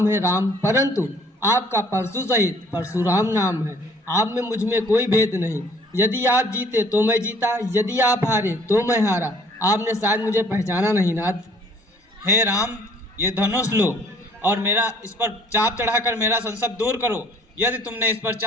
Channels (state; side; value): normal; both; correlation 0.57